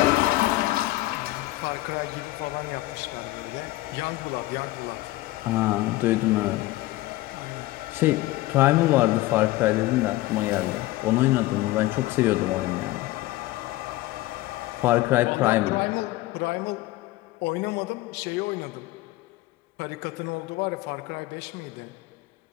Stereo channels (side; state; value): right; quieter; 18.0 dB